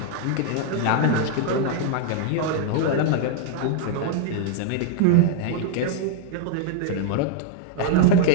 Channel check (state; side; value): different; both; correlation 0.00